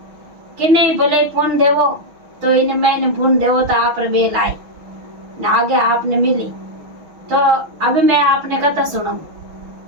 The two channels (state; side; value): late; left; 6.1 ms